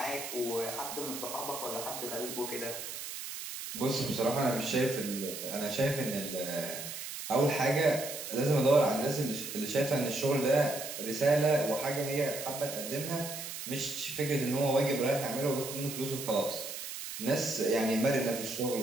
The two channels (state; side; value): noise; right; hiss, 8 dB below the sound